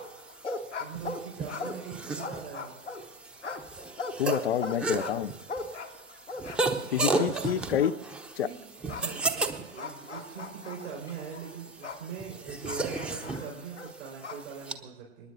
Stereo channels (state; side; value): normal; both; correlation 0.23